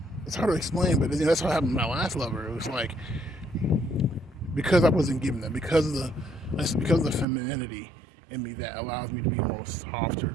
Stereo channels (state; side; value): drops out; left; at 7.2 s